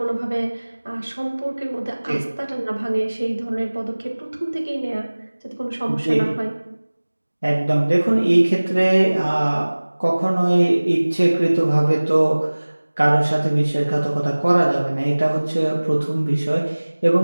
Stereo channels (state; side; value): inverted; both; correlation -1.00